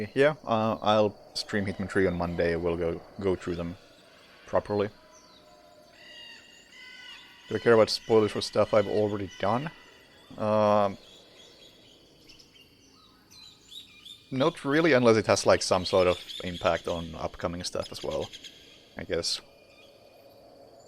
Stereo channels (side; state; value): both; identical; correlation 1.00